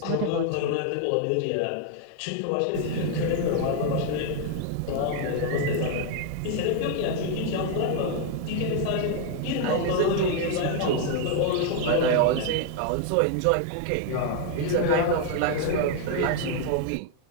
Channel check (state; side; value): different; both; correlation 0.00